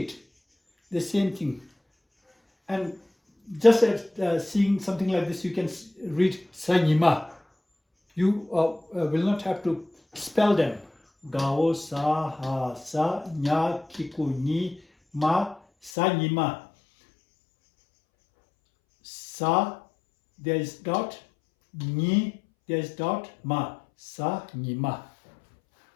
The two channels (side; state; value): right; drops out; at 15.9 s